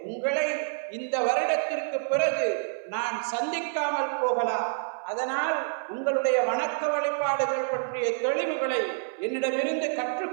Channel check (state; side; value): silent; left; 58 dB below the other